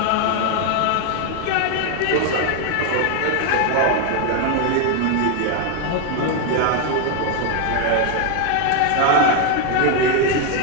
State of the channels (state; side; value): different; both; correlation 0.01